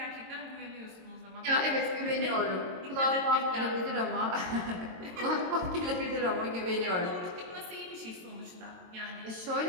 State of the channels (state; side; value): late; left; 22 ms